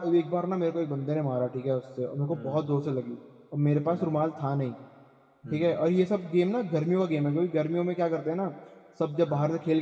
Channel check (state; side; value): identical; both; correlation 1.00